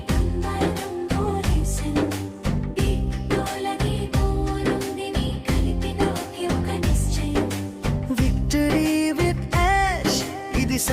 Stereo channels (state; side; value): identical; both; correlation 1.00